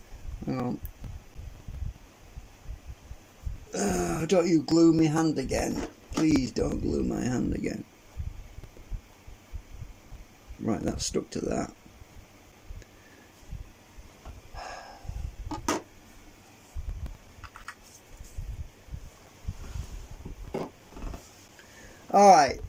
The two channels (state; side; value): identical; both; correlation 1.00